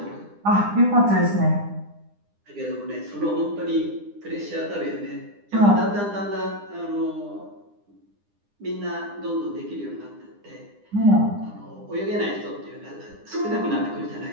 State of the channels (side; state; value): left; late; 9.9 ms